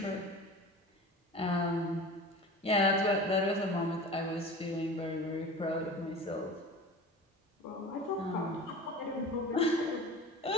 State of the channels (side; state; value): both; normal; correlation 0.36